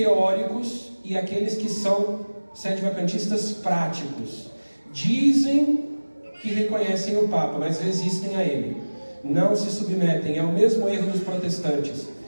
e aqueles que são sedevacantistas práticos. Dizem que reconhecem o Papa, mas resistem a ele. Não se submetem. É o mesmo erro dos protestantes.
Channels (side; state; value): both; inverted; correlation -1.00